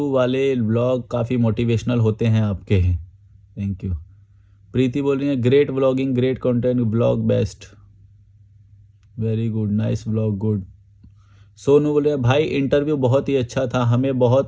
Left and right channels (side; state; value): both; identical; correlation 1.00